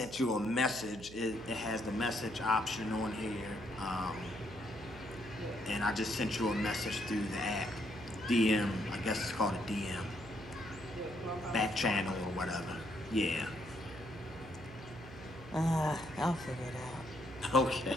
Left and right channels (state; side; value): noise; right; hum, 15 dB below the sound